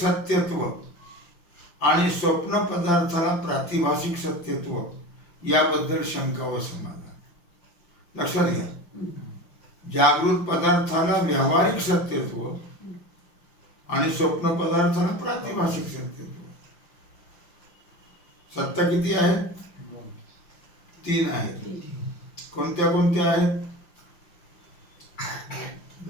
आणि स्वप्न पदार्थाला प्रातिभाषिक सत्यत्व याबद्दल शंका व समाधान. लक्षात घ्या. जागृत पदार्थाला व्यावहारिक सत्यत्व आणि स्वप्न पदार्थाला प्रातिभाषिक सत्यत्व. सत्ता किती आहेत? 3 आहेत. कोणत्या कोणत्या आहेत?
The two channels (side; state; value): right; late; 5.8 ms